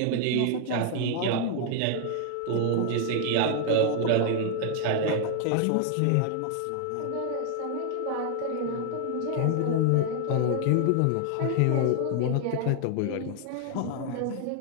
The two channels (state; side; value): different; both; correlation 0.00